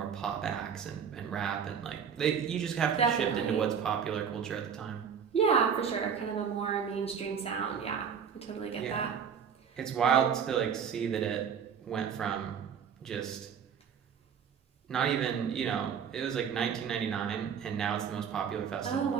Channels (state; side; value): quieter; left; 7.3 dB